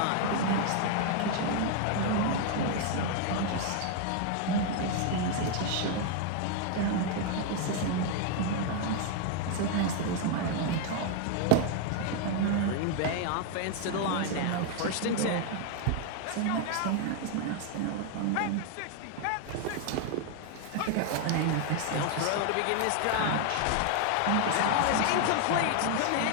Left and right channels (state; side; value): different; both; correlation 0.00